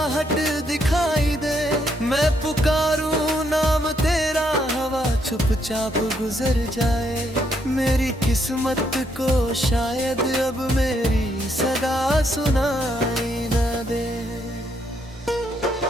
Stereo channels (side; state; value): both; normal; correlation 0.74